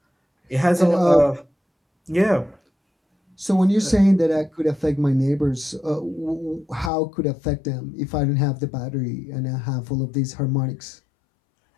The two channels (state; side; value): drops out; right; at 6.9 s